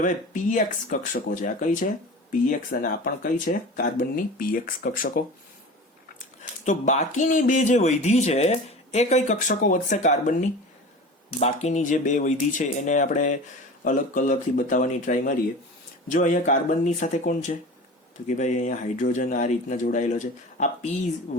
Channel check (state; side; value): normal; both; correlation 0.35